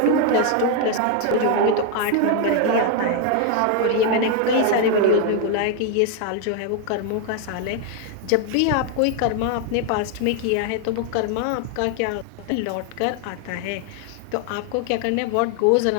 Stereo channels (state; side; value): different; both; correlation 0.00